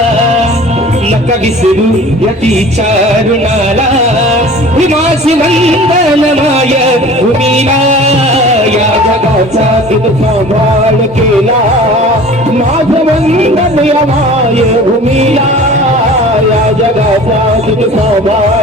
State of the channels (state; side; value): normal; both; correlation 0.43